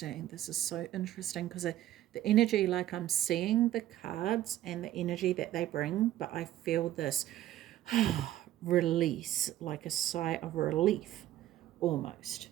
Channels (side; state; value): left; quieter; 13.4 dB